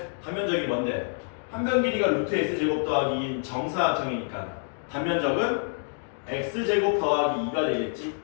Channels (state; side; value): silent; right; 60 dB below the other